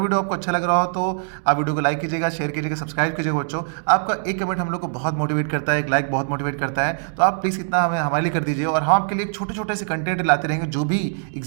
आपको अच्छा लग रहा हो तो आप वीडियो को लाइक कीजिएगा, शेयर कीजिएगा, सब्सक्राइब कीजिएगा बच्चों। आपका एक कमेंट हम लोग को बहुत मोटिवेट करता है, एक लाइक बहुत मोटिवेट करता है, तो आप प्लीज़ इतना हमें हमारे लिए कर दीजिए। और हम आपके लिए छोटे छोटे से कंटेंट लाते रहेंगे जो भी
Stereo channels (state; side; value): silent; left; 64 dB below the other